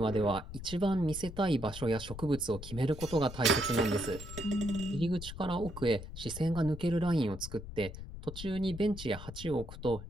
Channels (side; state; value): left; noise; rumble, 11 dB below the sound